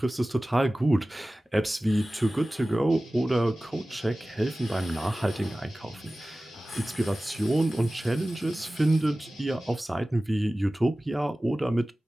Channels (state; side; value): normal; both; correlation 0.97